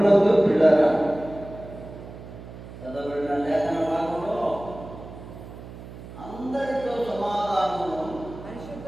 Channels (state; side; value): noise; right; hum, 14 dB below the sound